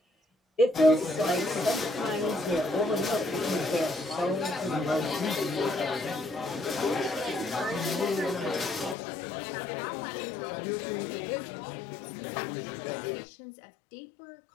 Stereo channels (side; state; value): right; drops out; at 9.0 s